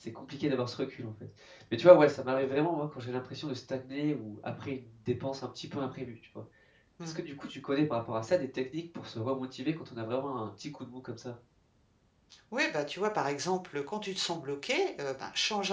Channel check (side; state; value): both; identical; correlation 1.00